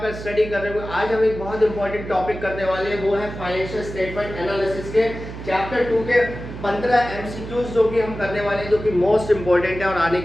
स्टडी कर रहे होंगे। आज हम एक बहुत इंपॉर्टेंट टॉपिक करने वाले हैं, वो है फाइनेंशियल स्टेटमेंट एनालिसिस के चैप्टर 2 के 15 एमसीक्यूज जो कि हम करने वाले हैं, जो कि मोस्ट इंपॉर्टेंट है और आने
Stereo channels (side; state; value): right; noise; hum, 10 dB below the sound